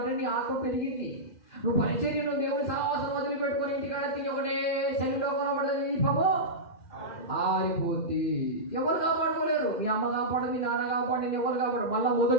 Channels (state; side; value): late; right; 2.0 ms